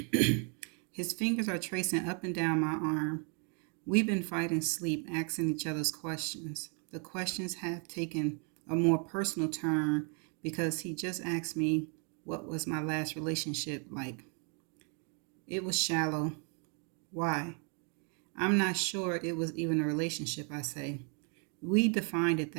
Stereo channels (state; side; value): quieter; left; 38.7 dB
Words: fingers are tracing up and down my arm. We've been fighting sleep, asking each other's questions. The questions have taken a more personal turn because he just asked me what was my last relationship like. It was shallow. Why? I'm not sure it was even a relationship, I say. We defined it